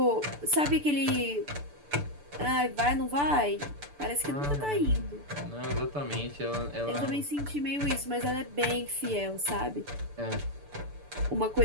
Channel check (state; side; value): late; left; 6.9 ms